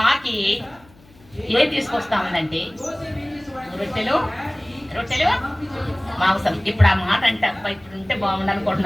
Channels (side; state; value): left; noise; hum, 27 dB below the sound